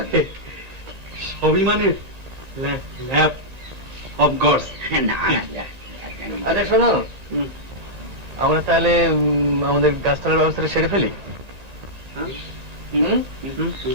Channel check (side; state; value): left; late; 1.9 ms